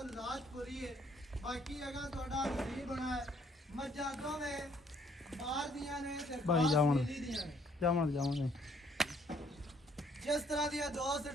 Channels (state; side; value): normal; both; correlation 0.65